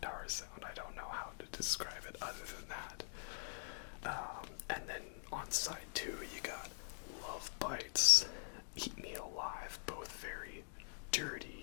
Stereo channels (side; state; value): right; silent; digital silence